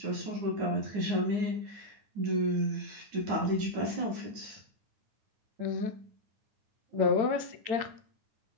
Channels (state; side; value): late; left; 9.6 ms